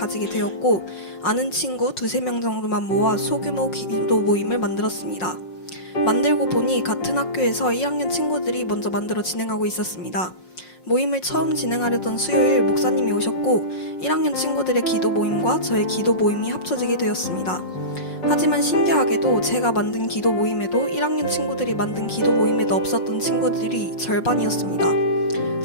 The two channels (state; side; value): late; right; 5.5 ms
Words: 되었고, 아는 친구 2~3명 정도만 모아 소규모 기도 모임을 만들었습니다. 만들고 보니 같은 학교에서 1학년 친구들이 먼저 만들어 진행하고 있었습니다. 모임을 처음 진행하려던 수요일 목사님이 오셨고 1학년 친구들의 기도 모임과 저의 기도 모임이 합쳐지게 되었습니다. 하지만 신기하게도 제가 만든 기도 모임에도 1학년 친구들이 만든 기도 모임에도 없었던 친구들이 절반이었습니다.